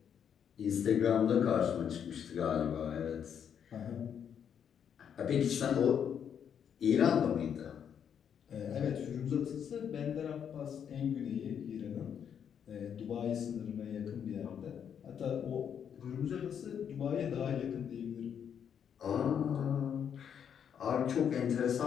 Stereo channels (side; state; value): right; quieter; 8.2 dB